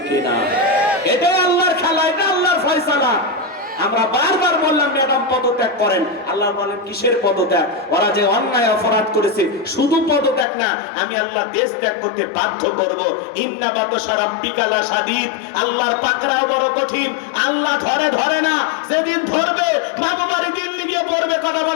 কিনা? এটাই আল্লাহর খেলা, এটা আল্লাহর ফয়সালা। আমরা বারবার বললাম ম্যাডাম পদত্যাগ করেন, আল্লাহ বলেন কিসের পদত্যাগ? ওরা যে অন্যায় অপরাধ করেছে, শুধু পদত্যাগ না, আমি আল্লাহ দেশ ত্যাগ করতে বাধ্য করব। ইন্না বাতশা রাব্বিকা লাশাদীদ, আল্লাহর পাকড়াও বড় কঠিন। আল্লাহ ধরে ধরে না, যেদিন ধরবে বাবু বাড়ি দিল্লি গিয়ে পড়বে। কথা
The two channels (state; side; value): drops out; right; at 10.5 s